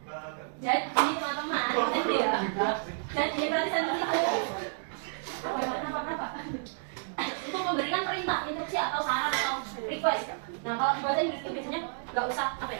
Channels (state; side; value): silent; left; digital silence